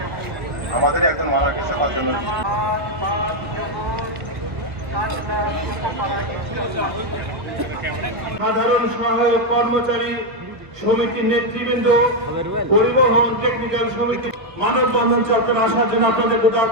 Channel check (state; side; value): late; left; 1.5 ms